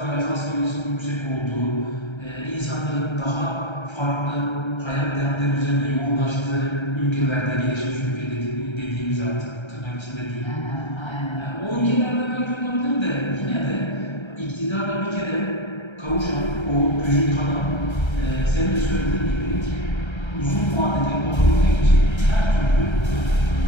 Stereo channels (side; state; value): right; late; 1.3 ms